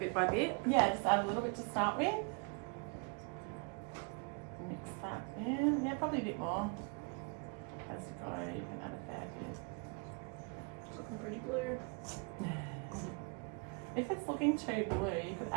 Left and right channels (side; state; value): left; quieter; 33.1 dB